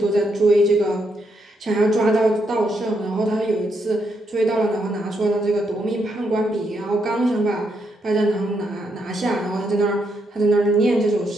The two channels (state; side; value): normal; both; correlation 0.78